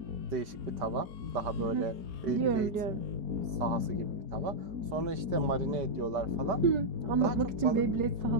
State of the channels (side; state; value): left; late; 5.2 ms